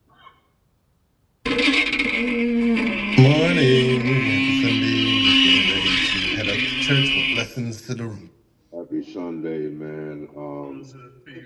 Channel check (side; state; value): both; identical; correlation 1.00